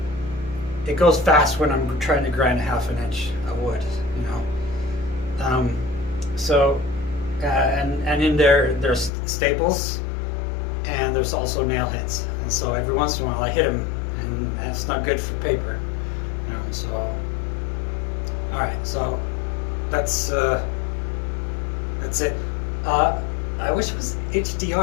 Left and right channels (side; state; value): right; drops out; at 9.1 s